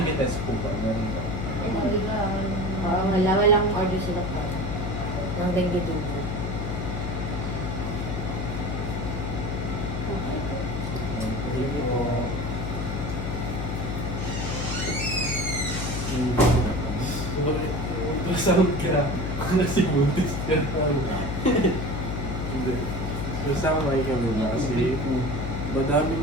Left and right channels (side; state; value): left; noise; hum, 3 dB below the sound